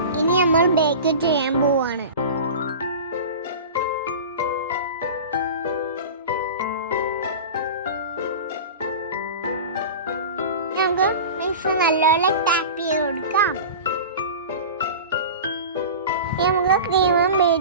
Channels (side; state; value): both; inverted; correlation -0.32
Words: ഇനി നമ്മൾ ബേക്ക് ചെയ്യാൻ പോവാണ്. നമുക്ക് മിക്സ് നല്ലപോലെ ടാപ്പ് ചെയ്ത് കൊടുക്കാം. നമുക്ക് ക്രീമും